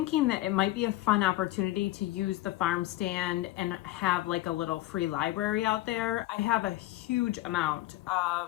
that it might be a fun opportunity to use the farm stand and have like a little free library out there. I have a huge amount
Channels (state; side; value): quieter; right; 16.7 dB